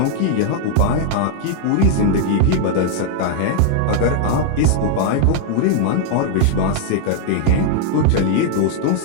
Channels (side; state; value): both; different; correlation 0.00